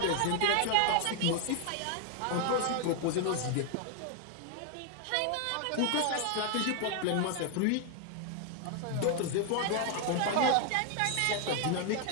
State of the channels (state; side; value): different; both; correlation 0.00